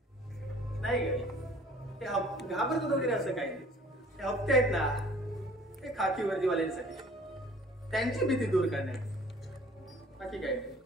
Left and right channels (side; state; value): both; normal; correlation 0.52